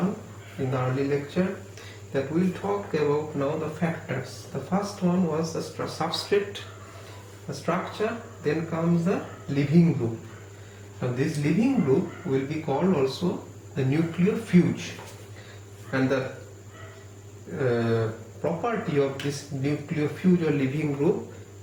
in the early lecture, that we'll talk about now the factors. The first one was the substrate, the structure, then comes the living group. Now this living group will be called also the nucleophilic, and the property of this nucleophilic or living group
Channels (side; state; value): both; identical; correlation 1.00